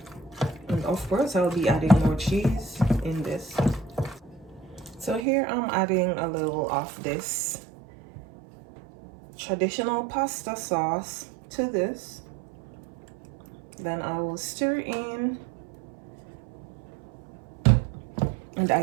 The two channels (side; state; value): left; drops out; at 5.2 s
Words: And of course I'll be adding more cheese in this. So here I'm adding a little of this traditional pasta sauce to this. Then I will stir in, and